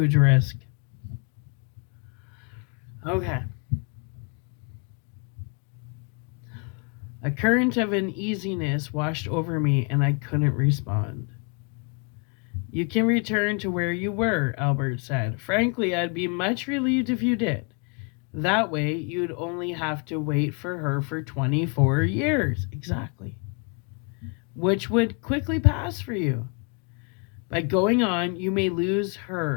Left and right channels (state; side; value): quieter; right; 36.8 dB